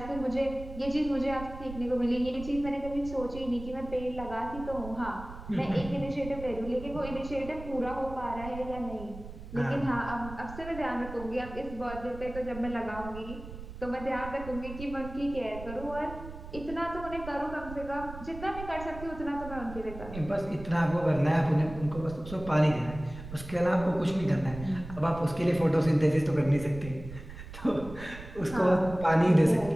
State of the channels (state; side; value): noise; right; rumble, 12 dB below the sound